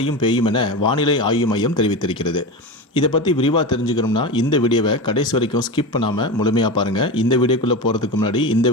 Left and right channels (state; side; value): normal; both; correlation 0.23